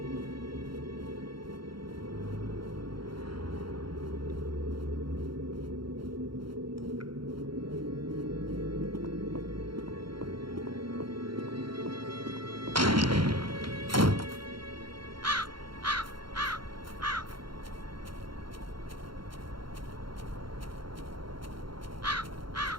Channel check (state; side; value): late; left; 0.73 ms